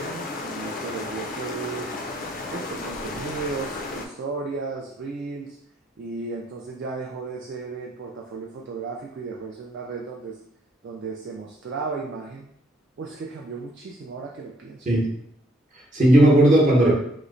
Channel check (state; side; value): normal; both; correlation 0.68